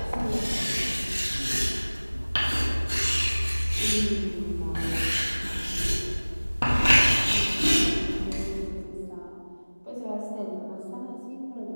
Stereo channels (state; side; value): inverted; both; correlation -1.00